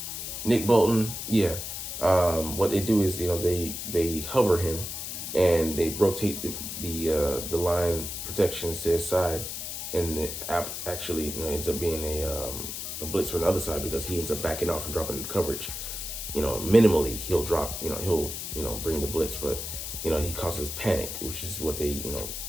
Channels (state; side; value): noise; left; hiss, 6 dB below the sound